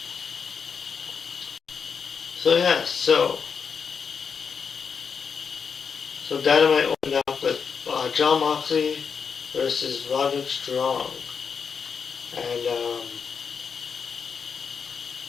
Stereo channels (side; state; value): right; quieter; 6.2 dB